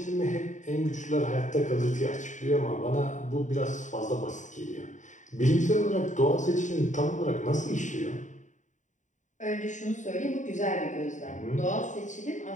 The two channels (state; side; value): late; right; 0.36 ms